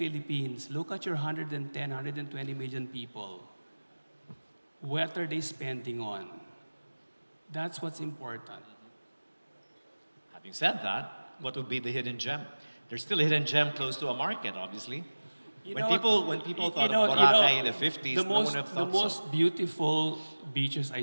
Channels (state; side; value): inverted; both; correlation -1.00